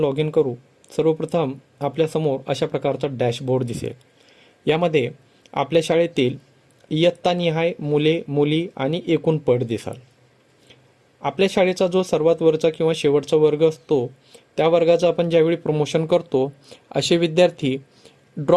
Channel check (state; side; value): identical; both; correlation 1.00